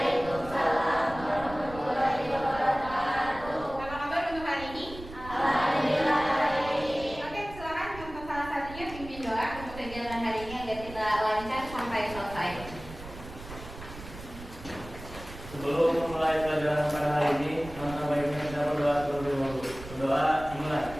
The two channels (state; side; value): noise; right; rumble, 14 dB below the sound